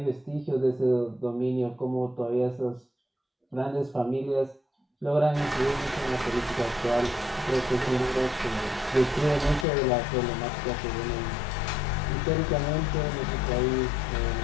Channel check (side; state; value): right; drops out; at 9.7 s